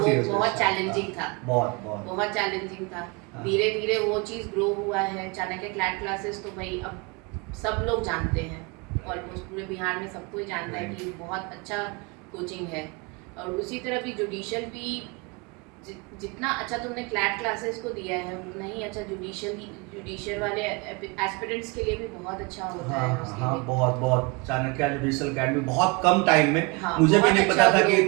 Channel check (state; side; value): quieter; left; 29.0 dB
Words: वो year से बहुत start, चैलेंजिंग था, बहुत चैलेंजिंग था। हाँ। धीरे धीरे वो चीज़ ग्रो हुआ है। चाणक्य क्लैट क्लासेस तो भाई अब सब लोग जानते हैं, ऑलमोस्ट पूरे बिहार में सबको ही जानता है कि बहुत अच्छा कोचिंग है। और उसी तरह भी जुडिशियल भी जितना अच्छा तुमने क्लैट क्लासेस को दिया है, उतना ही अच्छा जुडिशियल वाले एस्पिरेंट्स के लिए भी बहुत अच्छा होता है उसके हाँ, लिए। बहुत चाणक्य जुडिशियल एकेडमी बहुत कम टाइम में, हाँ, मुझे भी बहुत नहीं अच्छा पता था कि ग्रो